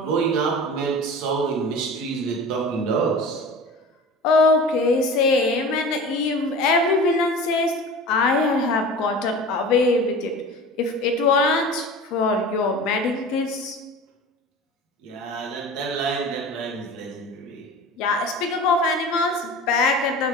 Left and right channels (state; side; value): normal; both; correlation 0.36